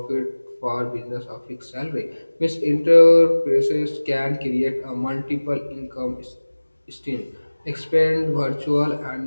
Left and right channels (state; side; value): inverted; both; correlation -1.00